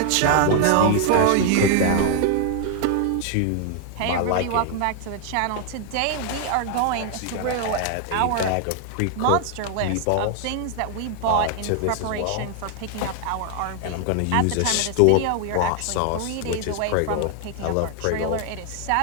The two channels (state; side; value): different; both; correlation 0.00